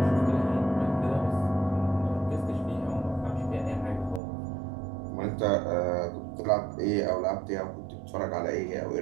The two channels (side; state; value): left; drops out; at 4.2 s